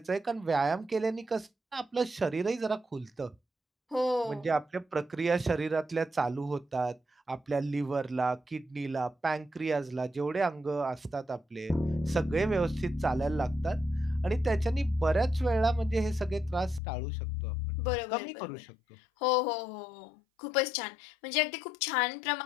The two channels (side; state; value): right; drops out; at 16.8 s